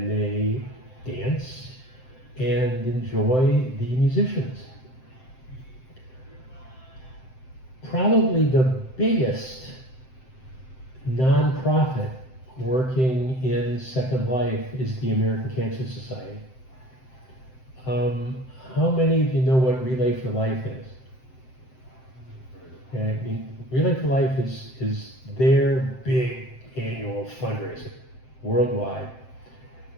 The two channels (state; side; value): late; right; 7.7 ms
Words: they dance and enjoy the musicians. probably the biggest nonprofit working in Second Life is the American Cancer Society. How many of you know what Relay for Life is? Okay, I mean, Relay for Life is their big annual fundraiser worldwide.